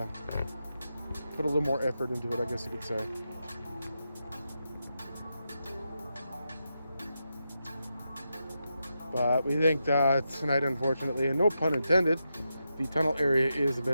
put a little more effort into it, I guess you could say. But we think that tonight, unfortunately, and no pun intended, the tunnel area is a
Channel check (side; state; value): both; inverted; correlation -0.87